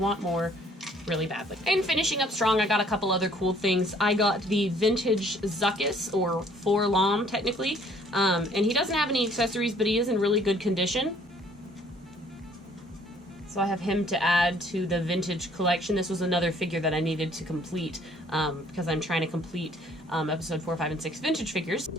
more really badly. And finishing up strong, I got a couple other cool things. I got the vintage Zuckuss, or Forlom technically, and he doesn't have any accessories, but he is in really good condition. So I have him to add to the vintage collection. This was another figure that I needed to complete because I'm trying to complete episode 4, 5, and 6 vintage figures.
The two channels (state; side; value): normal; both; correlation 0.59